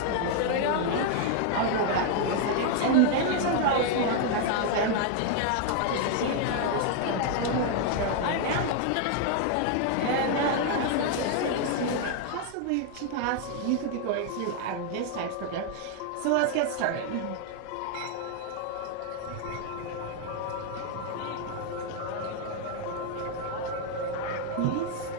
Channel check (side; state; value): both; different; correlation 0.00